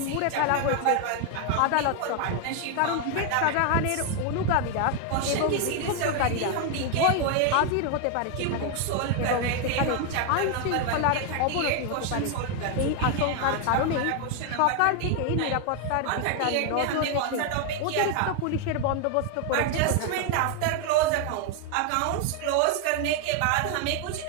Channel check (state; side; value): different; both; correlation 0.00